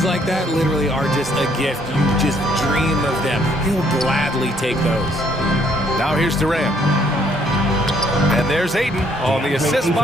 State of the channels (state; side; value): normal; both; correlation 0.66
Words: like that literally are just a gift. You just dream of them. He'll gladly take those. Now here's Durant. And there's Ayton on the assist